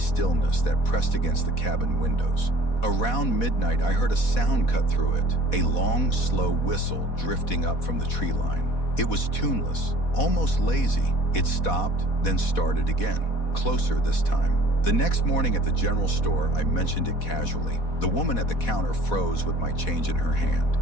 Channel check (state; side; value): late; right; 4.1 ms